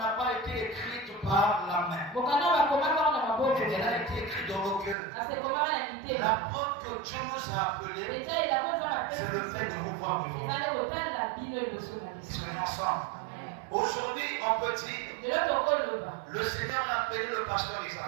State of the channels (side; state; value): left; drops out; at 5.0 s